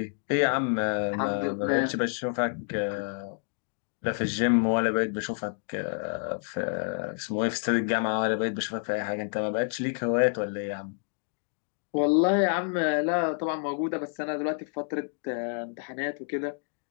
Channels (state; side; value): silent; right; 58 dB below the other